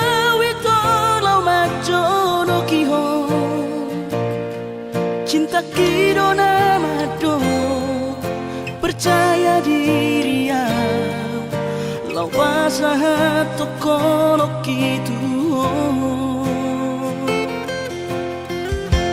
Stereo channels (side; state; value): both; identical; correlation 1.00